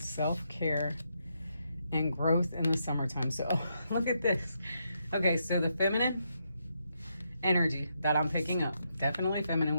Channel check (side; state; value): both; inverted; correlation -0.80